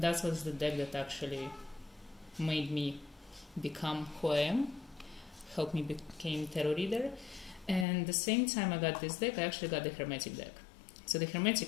that was the deck that actually made me become who I am, helped me become tarot reader. And the same time I got this deck, I actually got the Hermetic deck. So the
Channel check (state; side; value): drops out; right; at 7.9 s